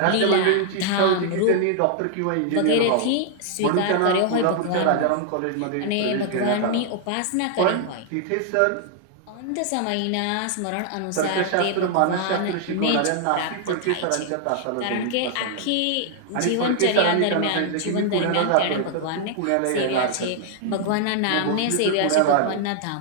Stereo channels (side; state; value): both; different; correlation 0.00